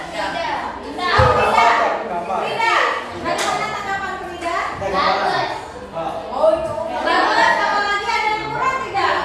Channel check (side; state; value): both; identical; correlation 1.00